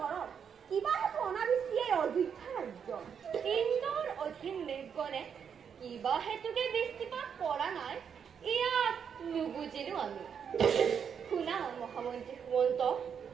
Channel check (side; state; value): left; quieter; 7.3 dB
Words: কৰক। কিবা হেতু অনাবৃষ্টি এই অযোধ্যা ৰাজ্য। ইন্দ্ৰৰ অধীন মেঘগণে কিবা হেতুকে বৃষ্টিপাত কৰা নাই, ইয়াক নুবুজিলো আমি। শুনা মহামন্ত্ৰী সুমন্ত